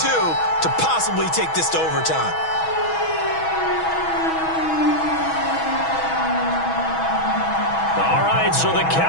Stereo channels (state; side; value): late; right; 6.2 ms